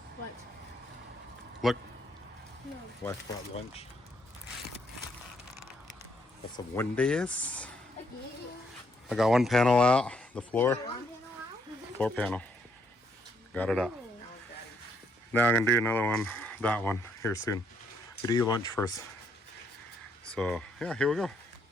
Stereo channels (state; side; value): normal; both; correlation 0.72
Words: What? Look. No. Wife brought lunch. Got some Wendy's. I got one panel out, the floor. Floor panel. Got it out. Now I'm gonna do another one, that one, here soon. We'll eat lunch first. So yeah, here we go.